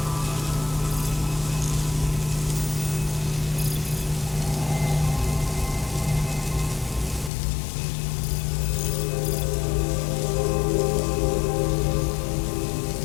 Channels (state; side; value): drops out; right; at 7.3 s